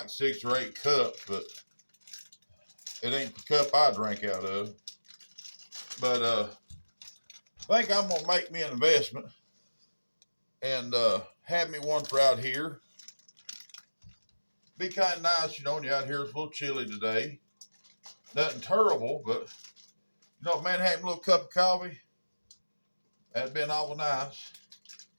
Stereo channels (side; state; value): both; inverted; correlation -1.00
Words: 6 or 8 cups, but It ain't the cup I drink out of. But I think I'm gonna make me an investment and have me one for out here. Be kind of nice, you know, when you're out here. It's a little chilly today. Nothing terrible, but you know, man, having a little cup of coffee, that'd been awful nice.